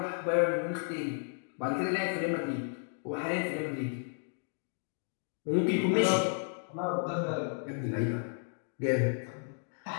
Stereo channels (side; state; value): right; silent; 56 dB below the other